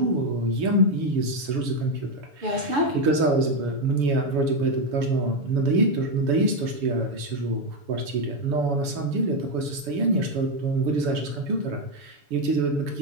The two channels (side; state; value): left; late; 7.0 ms